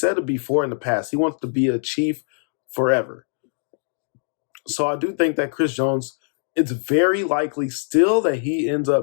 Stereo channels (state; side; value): silent; right; digital silence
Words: it before in the past. He wants to be a Chief forever. So I do think that Chris Jones, it's very likely still that he ends